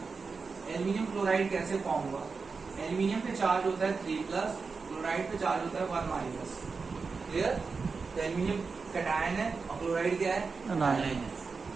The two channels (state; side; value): quieter; left; 4.7 dB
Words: Aluminium chloride कैसे फॉर्म हुआ, एल्यूमिनियम पे चार्ज होता है 3 प्लस, क्लोराइड पे चार्ज होता है 1 माइनस। क्लियर? तो एल्यूमिनियम कटायन है और क्लोराइड क्या है, अनायन है।